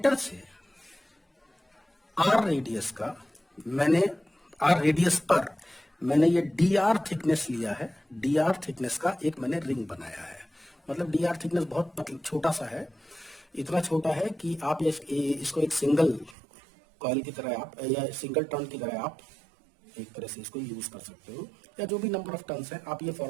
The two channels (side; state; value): left; drops out; at 16.4 s